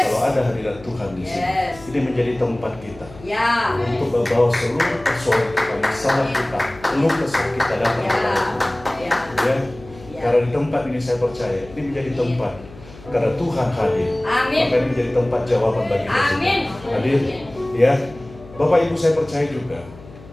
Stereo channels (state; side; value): noise; left; hum, 19 dB below the sound